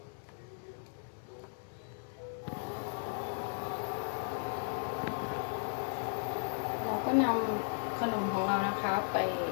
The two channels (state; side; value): silent; right; digital silence